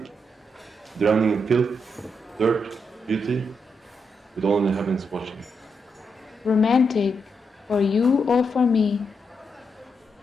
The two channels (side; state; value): both; normal; correlation 0.82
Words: Drowning in filth, dirt, beauty, with only the heavens watching. Romantic, for you or for me?